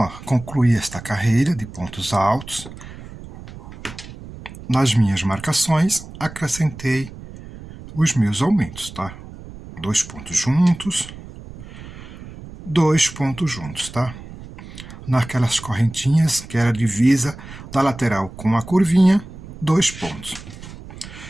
concluí esta carreira de pontos altos. Nas minhas marcações, acrescentei os meus aumentos, tá? 2 pontos juntos, 2 pontos juntos, tá? Naquelas correntinhas que era a divisa da lateral com a curvinha, 2 pontos.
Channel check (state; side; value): noise; right; rumble, 15 dB below the sound